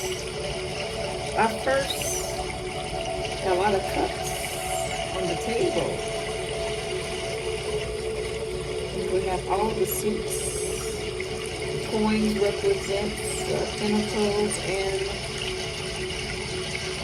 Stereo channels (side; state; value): both; identical; correlation 1.00